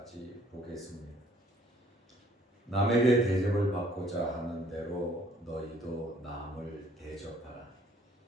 보겠습니다. 남에게 대접을 받고자 하는 대로 너희도 남을 대접하라.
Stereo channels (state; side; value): normal; both; correlation 0.60